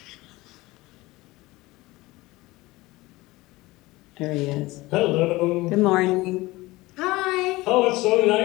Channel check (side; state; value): right; quieter; 20.3 dB